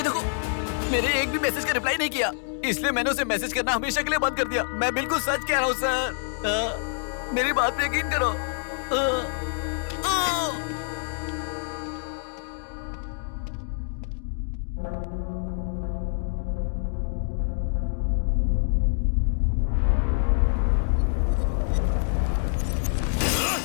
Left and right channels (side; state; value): right; silent; digital silence